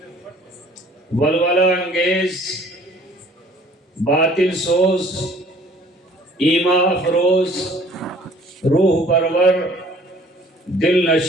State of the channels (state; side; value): normal; both; correlation 0.54